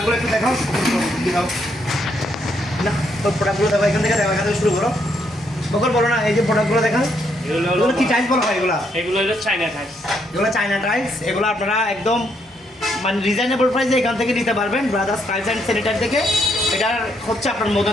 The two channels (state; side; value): normal; both; correlation 0.75